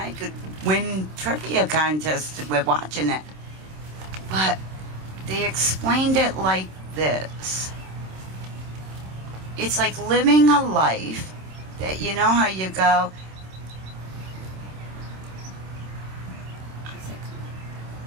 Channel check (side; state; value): left; late; 26 ms